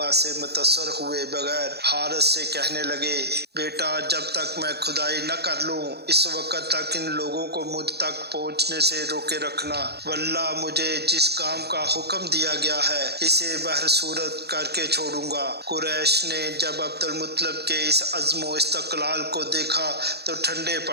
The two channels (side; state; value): left; late; 0.48 ms